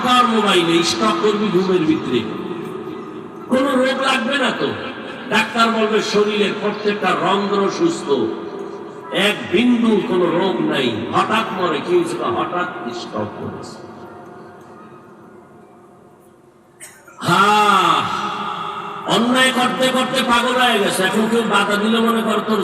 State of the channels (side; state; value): both; identical; correlation 1.00